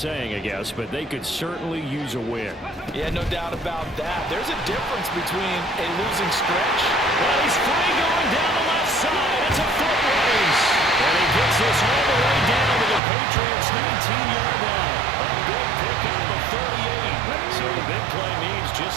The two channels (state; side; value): drops out; left; at 13.0 s